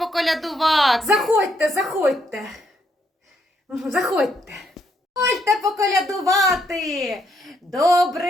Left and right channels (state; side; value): normal; both; correlation 0.75